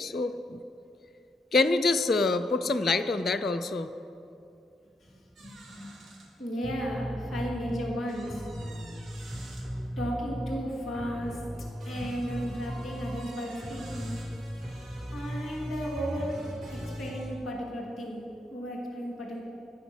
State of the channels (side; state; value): both; normal; correlation 0.79